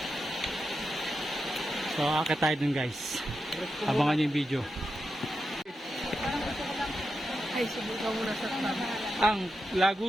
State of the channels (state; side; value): normal; both; correlation 0.88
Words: so akit tayo dun guys, abangan nyo yung video. Ay, subukan muna sa tabi. Ang